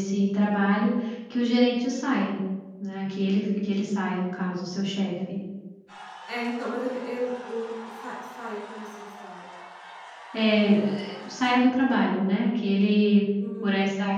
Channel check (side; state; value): both; identical; correlation 1.00